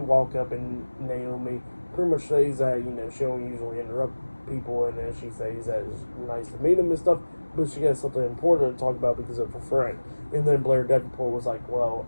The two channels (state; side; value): inverted; both; correlation -1.00